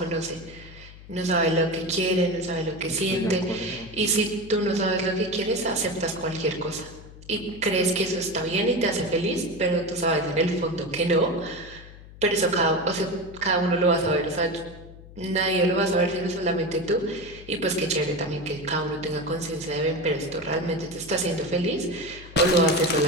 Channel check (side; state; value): left; noise; hum, 18 dB below the sound